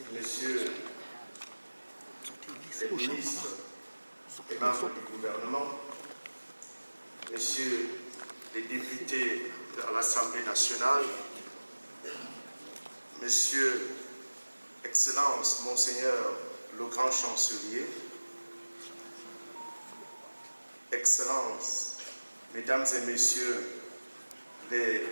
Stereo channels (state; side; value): inverted; both; correlation -1.00